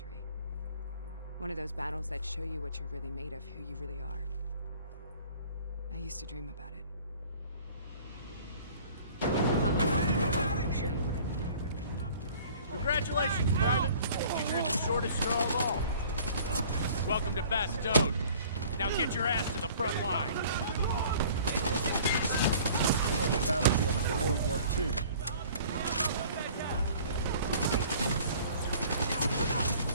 One of those battles that show you what you're really made of, who you really are. I used to dream about it. show you what I mean. Congratulations, Private. You drew the shortest straw of all. Welcome to Bastogne. Now get your ass to the front line. On the battlefield of World War II.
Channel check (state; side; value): inverted; both; correlation -0.50